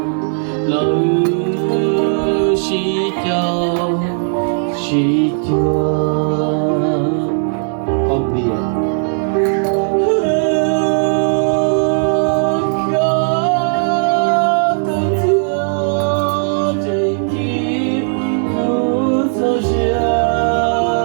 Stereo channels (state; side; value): silent; left; digital silence